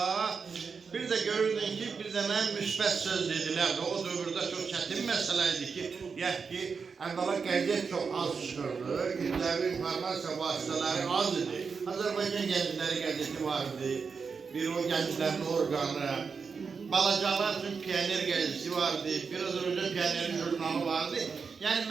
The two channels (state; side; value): quieter; left; 5.4 dB